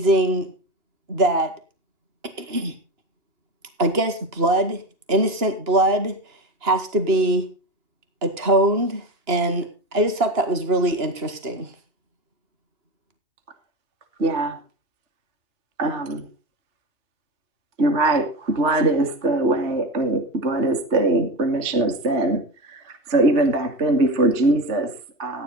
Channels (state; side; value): late; left; 2.9 ms